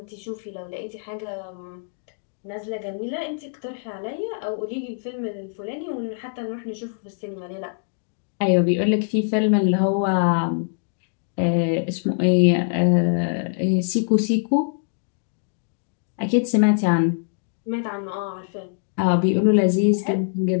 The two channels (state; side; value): silent; right; digital silence